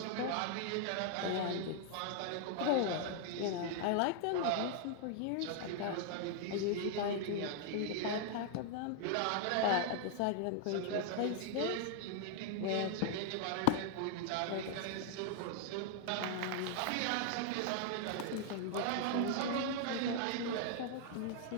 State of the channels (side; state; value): both; different; correlation 0.00